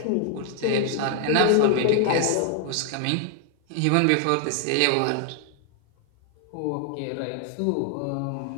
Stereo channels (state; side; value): different; both; correlation 0.00